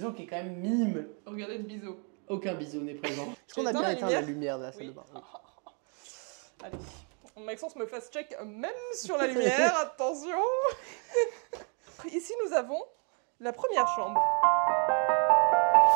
qui est quand même minime. Regardez le biseau. Aucun biseau n'est présent. Est-ce qu'on a Éteins bien la éteint la lumière lumière de la salle Oui. de bain? Oui. Allez. Maxence me fasse check même sur la lumière, attention. Ici nous avons la première chambre.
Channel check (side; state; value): left; quieter; 38.1 dB